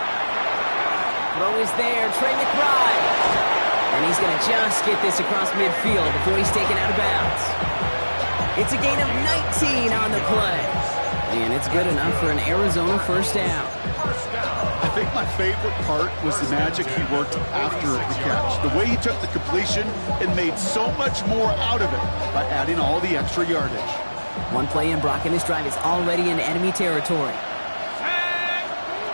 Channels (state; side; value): inverted; both; correlation -1.00